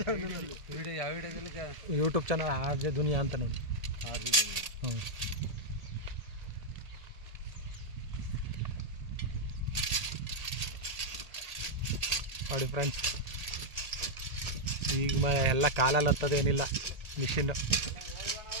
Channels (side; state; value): left; late; 1.8 ms